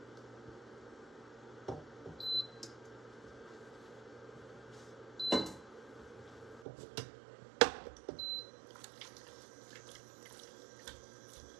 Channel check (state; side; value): drops out; left; at 6.7 s